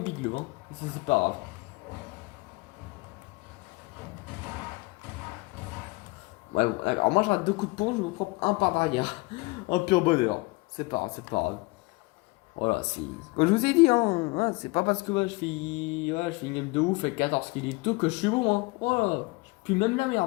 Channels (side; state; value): right; quieter; 24.9 dB